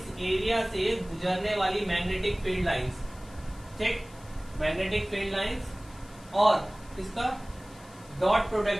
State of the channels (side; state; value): left; noise; hiss, 24 dB below the sound